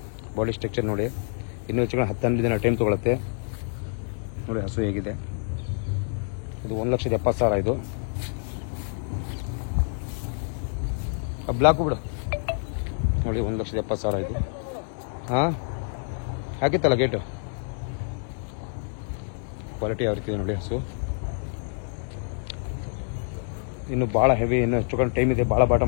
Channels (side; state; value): right; silent; 58 dB below the other